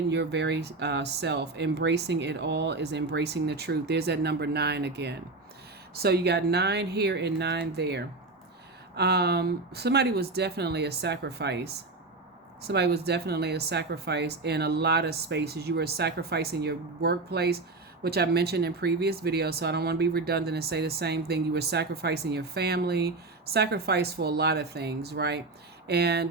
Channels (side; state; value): left; quieter; 3.4 dB